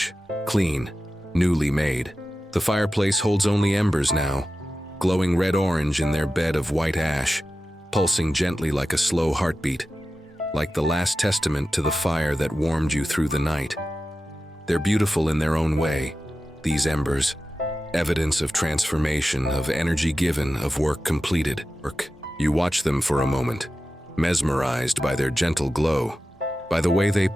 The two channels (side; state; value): both; normal; correlation 0.93